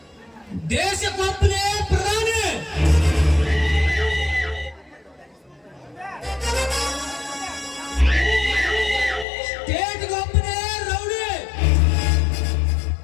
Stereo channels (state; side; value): drops out; right; at 9.2 s